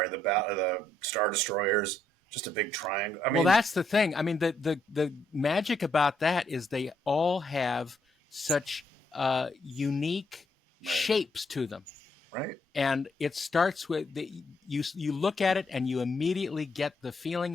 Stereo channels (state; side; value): normal; both; correlation 0.74